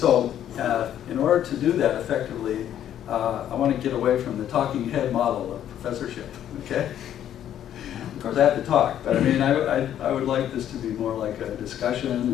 in order to do that effectively, I want to get away from the talking head model of professorship, okay? Of course, I have to talk, but I mean, I would like this to be more like a discussion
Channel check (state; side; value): quieter; right; 10.7 dB